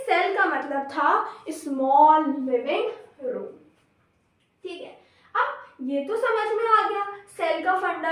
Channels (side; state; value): both; identical; correlation 1.00